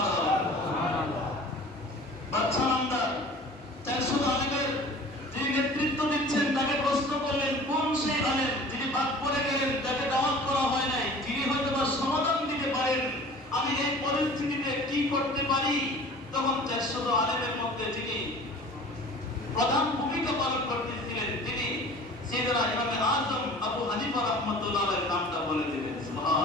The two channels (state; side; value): normal; both; correlation 0.44